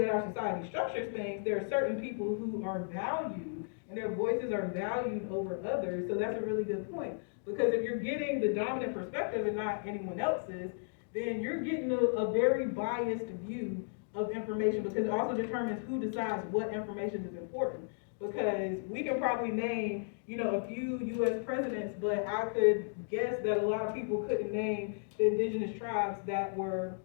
that our society structures things, there are certain people who are valued, and their voices are valued over others. So that's a really good point. Because if you're getting the dominant perspective and not anyone else's, then you're getting a very biased view of information, because it also determines who decides what information is important. Because we can probably name, a few U.S. presidents, but I could guess that a lot of people couldn't name the indigenous tribes that were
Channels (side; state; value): right; silent; digital silence